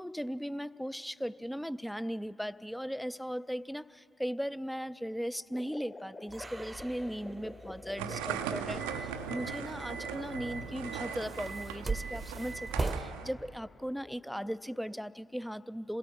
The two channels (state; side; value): normal; both; correlation 0.87